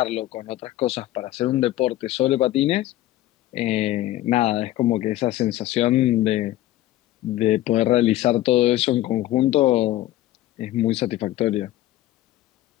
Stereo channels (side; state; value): right; quieter; 14.9 dB